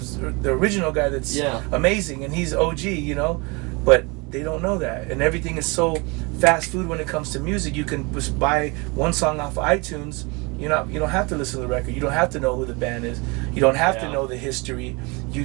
the original guy that's amazing and he's OG, you know? But they don't know that. And everything is so fast food when it comes to music. You can just buy one song off of iTunes. You don't have to listen to the record. You don't have to know who the band is. You don't have to know the history.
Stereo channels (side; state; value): left; quieter; 28.3 dB